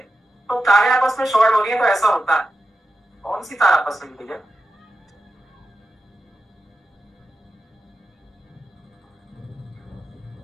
तो तारे आपस में शॉर्ट हो रही है, तो ऐसा होता है। कौन सी तार आपस में मिल है?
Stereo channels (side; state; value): both; normal; correlation 0.91